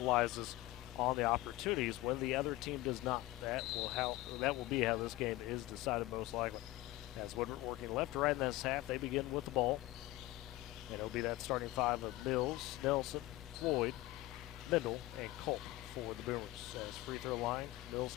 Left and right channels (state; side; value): quieter; right; 17.9 dB